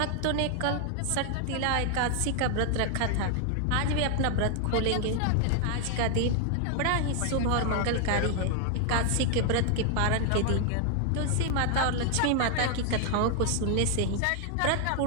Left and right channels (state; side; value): different; both; correlation 0.00